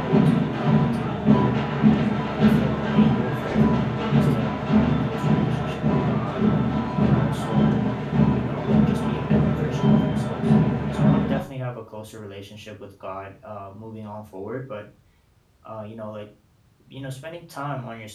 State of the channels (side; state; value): both; identical; correlation 1.00